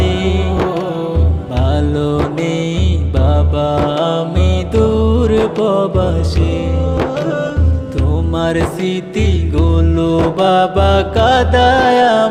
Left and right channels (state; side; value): identical; both; correlation 1.00